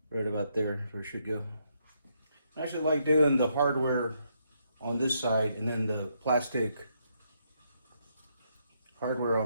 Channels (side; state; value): both; inverted; correlation -0.76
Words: right about there is where it should go. I actually like doing the hardware on this side and then the plastic hardware